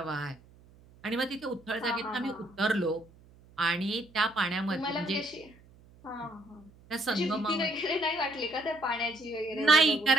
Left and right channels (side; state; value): right; noise; hum, 26 dB below the sound